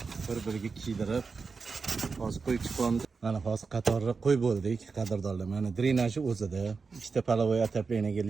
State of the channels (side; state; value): left; quieter; 4.8 dB